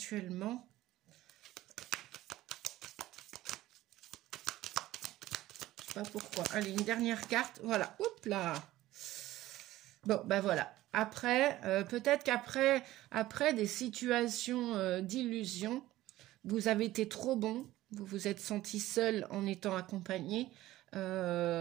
pas pourquoi. Allez, une dernière carte. Voilà. Oups là. Bon, ben voilà. Après, peut-être qu'après des situations d'illusion, vous avez été trop bon. Vous vous êtes senti seul en étant accompagné.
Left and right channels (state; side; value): quieter; left; 15.9 dB